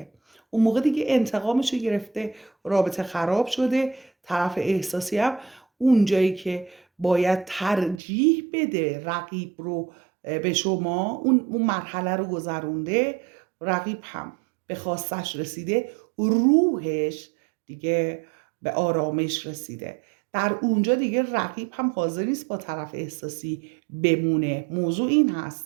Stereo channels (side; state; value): left; drops out; at 8.0 s